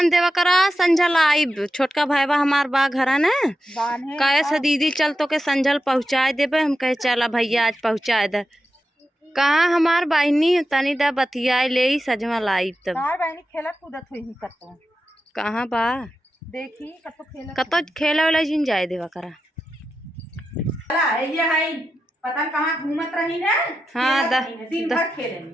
देवा करा, संझल आई छोटका भाईबा हमार बा घरा न बांधे कहे से दीदी चल तो के संझल पहुँचाए देबे। हम कहे चला भैया आज पहुँचाए दे। कहाँ हमार बहनी तनी दा बतियाए ले सजमा लाई तब। तार बहनी खेलत कूदत हुई ही कतो कहाँ बा देखी कतो खेले वाला जिन जाए देवा करा। ये है पता कहाँ घूमत रही ना। हाँ दिन भर खेले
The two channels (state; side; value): normal; both; correlation 0.89